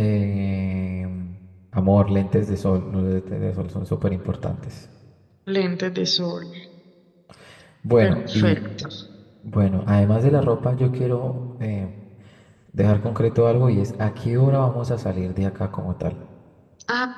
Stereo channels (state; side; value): identical; both; correlation 1.00